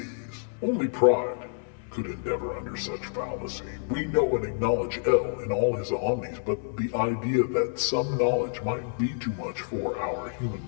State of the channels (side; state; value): right; silent; 59 dB below the other